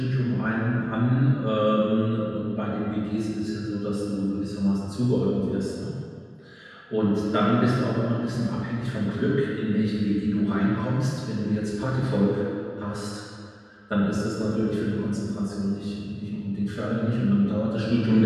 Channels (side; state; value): both; identical; correlation 1.00